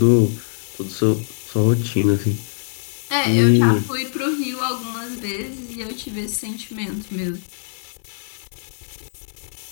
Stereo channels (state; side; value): silent; right; 57 dB below the other